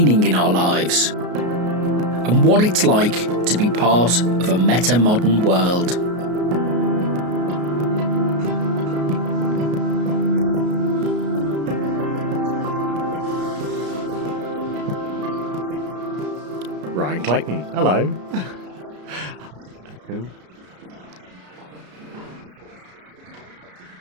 in our lives and what it's like to be part of a meta-modern world. Hello, welcome to Distraction Therapy with me, Rob Watson, and today with Ryan Clayton. Hello. Hello. And we're sitting in a coffee shop again in Leicester, and before we've finished one coffee and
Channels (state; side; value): late; left; 33 ms